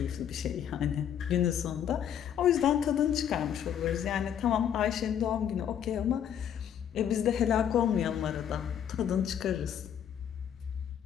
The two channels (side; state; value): right; quieter; 9.2 dB